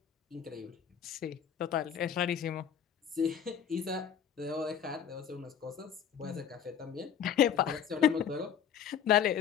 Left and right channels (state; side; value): quieter; right; 8.4 dB